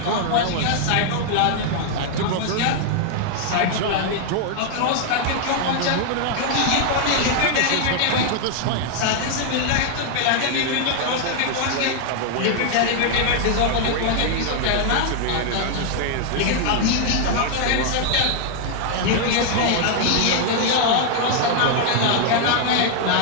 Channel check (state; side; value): different; both; correlation 0.00